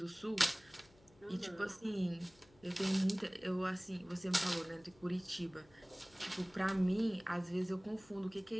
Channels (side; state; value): left; noise; hum, 27 dB below the sound